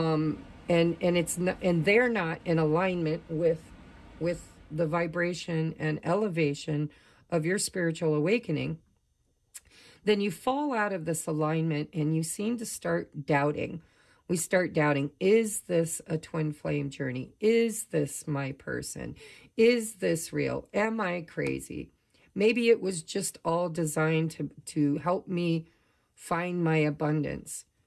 it's not, and they're not in alignment with the vibration and elevation of your spiritual awakening, then you fall out of this alignment and you seem to start doubting. We start doubting, is this a twin flame journey? Is this my person? Is this real? Am I crazy? Maybe it was just all designed to help me find my abundance,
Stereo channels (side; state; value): both; identical; correlation 1.00